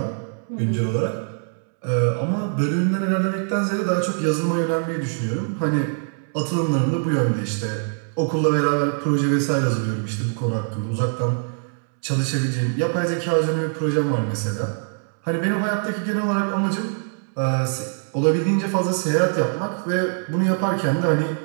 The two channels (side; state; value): left; silent; 63 dB below the other